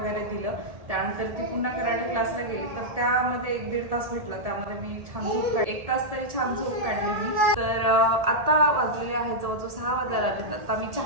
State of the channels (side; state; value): left; late; 1.8 ms